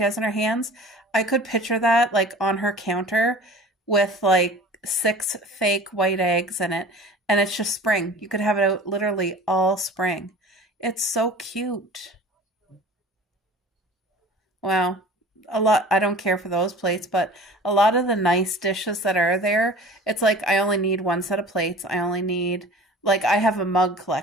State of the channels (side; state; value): both; normal; correlation 0.42